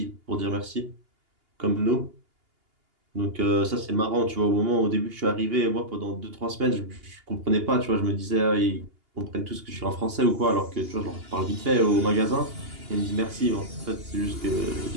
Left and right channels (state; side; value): late; left; 2.8 ms